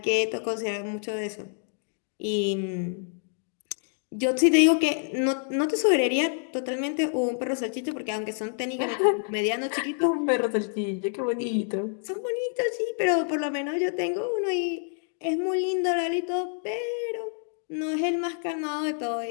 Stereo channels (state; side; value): silent; right; 60 dB below the other